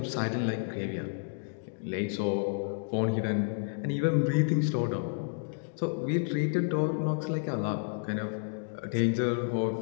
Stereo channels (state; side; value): silent; right; digital silence